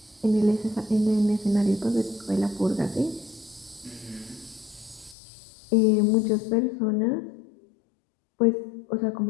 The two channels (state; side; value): drops out; right; at 5.2 s